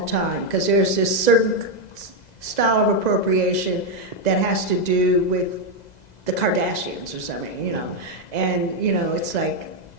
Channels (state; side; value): late; right; 2.0 ms